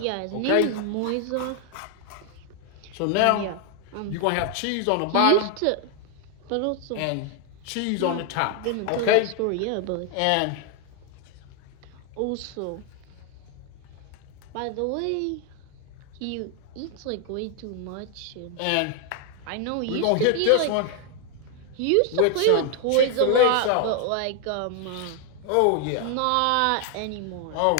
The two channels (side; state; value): both; different; correlation 0.00